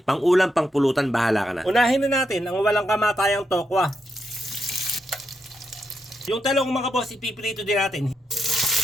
Pang-ulam, pang-pulutan, bahala ka na. Unahin na natin ang walang kamatayang tokwa. Yung talong mga boss, ipiprito din natin.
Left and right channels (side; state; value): both; normal; correlation 0.83